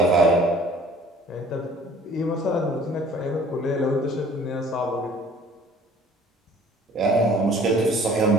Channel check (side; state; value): both; normal; correlation 0.52